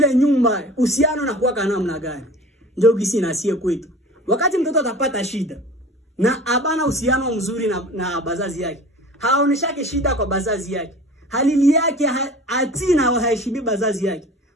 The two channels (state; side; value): normal; both; correlation 0.40